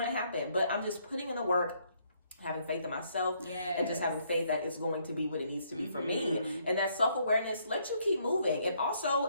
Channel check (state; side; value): inverted; both; correlation -0.70